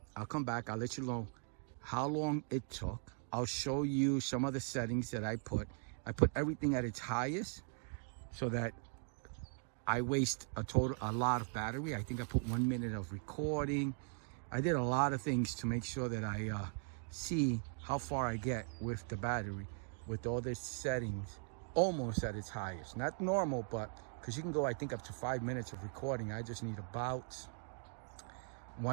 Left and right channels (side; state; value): left; silent; 51 dB below the other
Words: I'll come back. I'll let you know how long it took. I'll show you some of the settings that I put. I put everything at its highest so that I waste a lot of battery. I think I put 1 minute of recording. I did a lot of things to make sure that I see how far I get with the battery with all the settings almost at its highest. Not normal, but because you can go, I think, up to 5 minutes of recording. I just need about